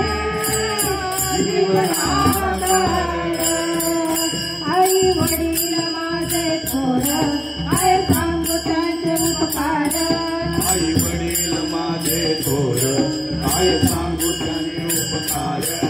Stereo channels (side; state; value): both; identical; correlation 1.00